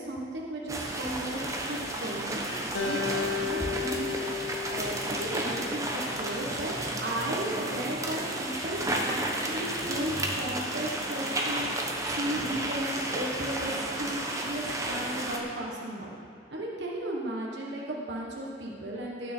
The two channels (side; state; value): both; normal; correlation 0.24